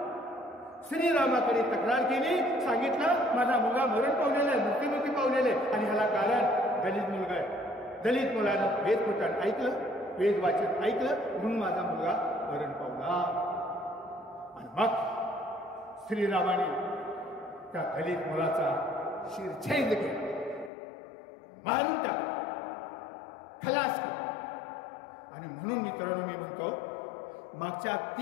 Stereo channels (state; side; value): drops out; right; at 20.7 s